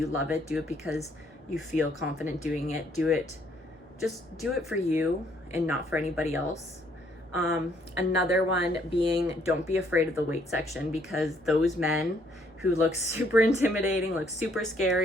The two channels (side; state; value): both; normal; correlation 0.67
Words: love it. Do it because you feel confident doing it. Just do it for you and not for anybody else. Another one being, don't be afraid of the weight section, because those men who look super intimidating, look super